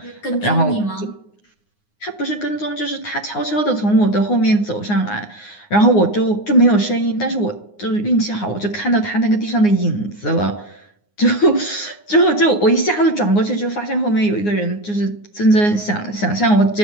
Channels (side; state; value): right; late; 9.7 ms